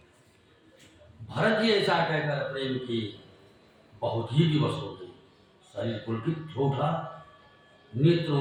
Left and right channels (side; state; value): both; identical; correlation 1.00